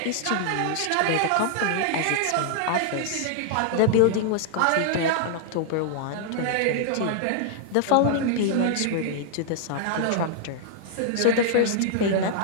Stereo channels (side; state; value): both; different; correlation -0.01